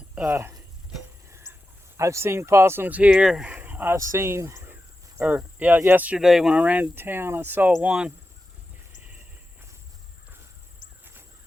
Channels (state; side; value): normal; both; correlation 0.92